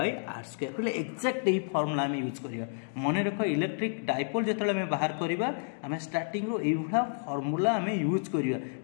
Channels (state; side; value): silent; right; digital silence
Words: are square पहले एक्जाक्ट यही फर्मूला आम यूज करवा मन रख इलेक्ट्रिक डाइपोल जो आम बाहर करवा आम स्टार्टिंग रो यही फर्मूला आम यूज करवा